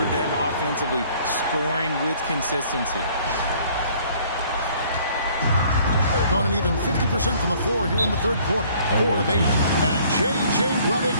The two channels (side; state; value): both; inverted; correlation -0.58